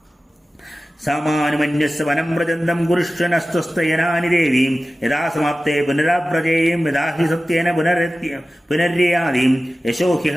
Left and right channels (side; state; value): both; normal; correlation 0.95